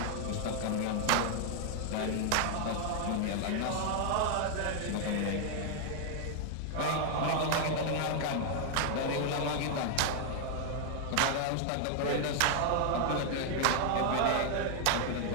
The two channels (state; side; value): different; both; correlation 0.00